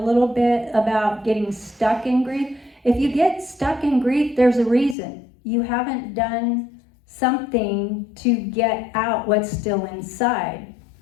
bit about getting stuck in grief. If you get stuck in grief, there's a reason. You haven't done something to get out what's still inside.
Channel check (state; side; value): drops out; right; at 5.0 s